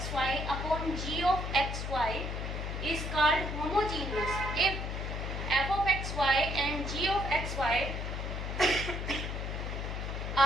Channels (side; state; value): left; noise; hum, 4 dB below the sound